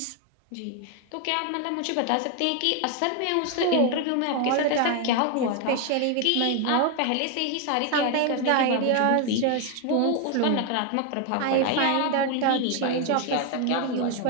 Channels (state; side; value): different; both; correlation 0.01